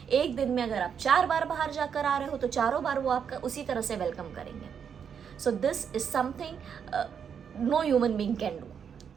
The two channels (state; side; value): quieter; left; 7.4 dB